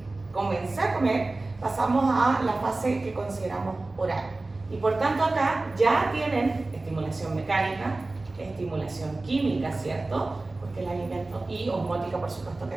comencé a comer, pasamos a la fase que consideramos oral. Y por tanto acá ya tienen estimulación mecánica, estimulación química, ¿cierto? Porque el alimento, y osmótica por supuesto que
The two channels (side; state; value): left; quieter; 3.2 dB